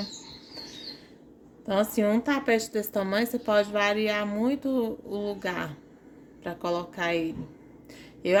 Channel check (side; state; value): both; identical; correlation 1.00